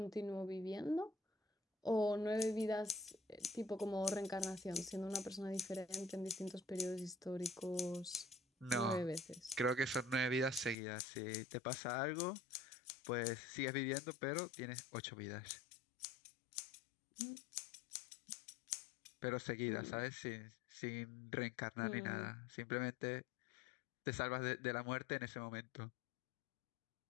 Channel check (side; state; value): right; drops out; at 10.8 s